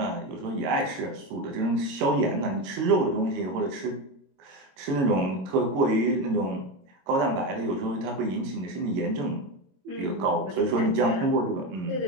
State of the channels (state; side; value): late; left; 22 ms